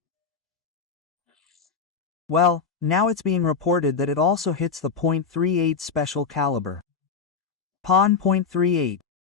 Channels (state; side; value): quieter; right; 5.6 dB